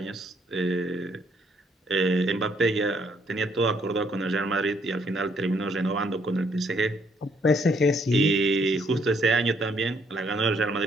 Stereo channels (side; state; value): both; normal; correlation 0.69